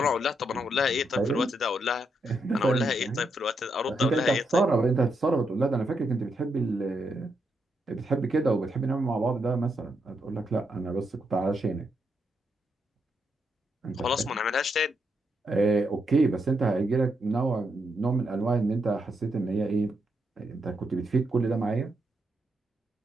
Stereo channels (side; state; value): both; normal; correlation 0.80